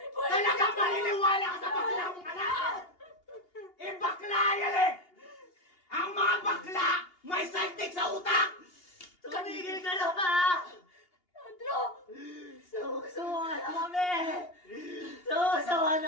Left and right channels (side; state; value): right; late; 2.8 ms